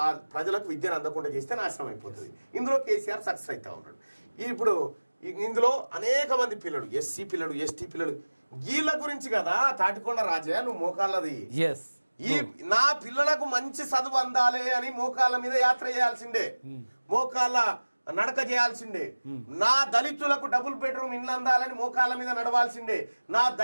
ఆ ప్రజలకు విద్యను అందకుండా చేస్తే నాశనం అయిపోతుంది. ఇందులో కేసీఆర్ సక్సెస్ అవుతా ఉన్నాడు. ఇప్పుడు ఇందులో అనేక మంది పిల్లలు, ఎస్సీ పిల్లలు, ఎస్టీ పిల్లలు, వీళ్ళ గురించి కదా తాటికొండ రాజయ్య నువ్వు మోకాళ్ళది. నా పిల్లలకు మంచి చదువు అందాలి అని మోకాళ్ళ మీద యాత్ర చేయాల్సిందే, మోకాళ్ళ నడక చేయాల్సిందే. నా దళితులకు డబుల్ బెడ్రూమ్ ఇల్లు అందాలని మోకాళ్ళ మీద నడవాల్సిందే. నా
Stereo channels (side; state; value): both; inverted; correlation -1.00